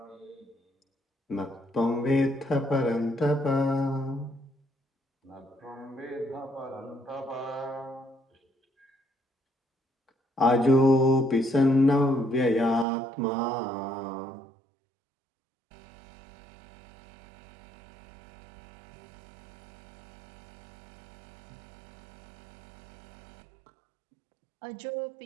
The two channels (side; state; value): left; drops out; at 12.9 s